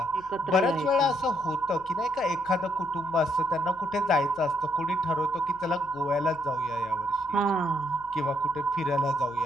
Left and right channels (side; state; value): left; noise; hum, 24 dB below the sound